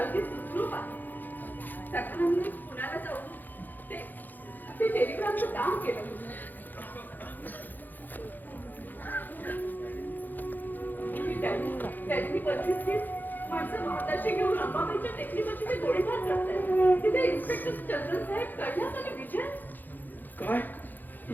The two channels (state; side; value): late; right; 0.086 ms